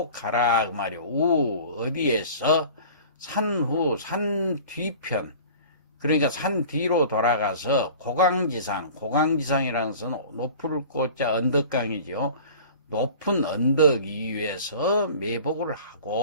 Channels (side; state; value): both; inverted; correlation -0.42